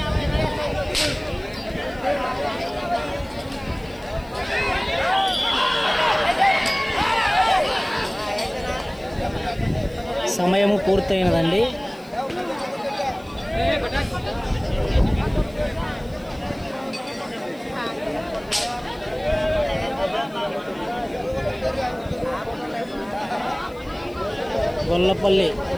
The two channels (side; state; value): left; noise; hiss, 27 dB below the sound